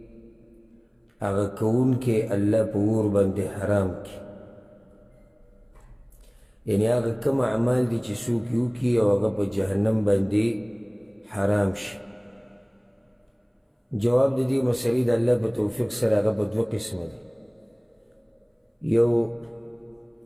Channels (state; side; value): identical; both; correlation 1.00